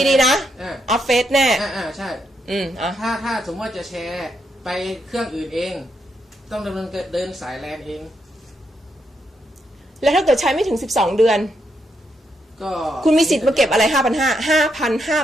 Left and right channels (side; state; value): both; normal; correlation 0.80